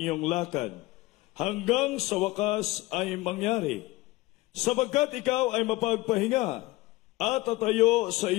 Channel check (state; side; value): quieter; right; 20.1 dB